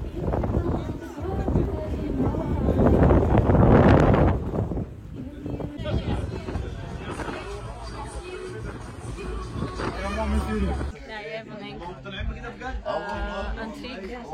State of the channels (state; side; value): identical; both; correlation 1.00